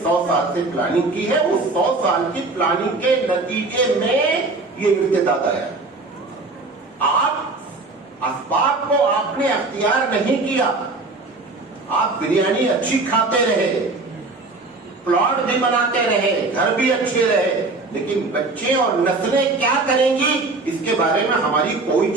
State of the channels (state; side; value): quieter; left; 3.4 dB